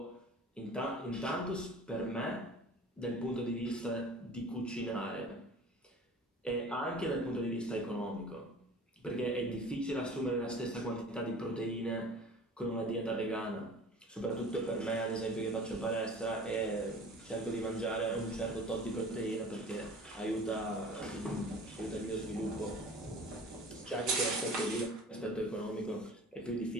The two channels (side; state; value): both; normal; correlation 0.42